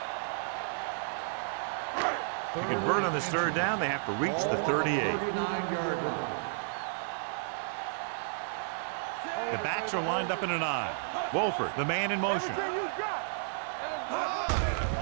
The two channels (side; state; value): left; silent; digital silence